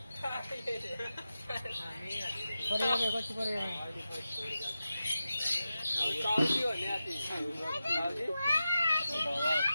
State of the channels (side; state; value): both; inverted; correlation -0.92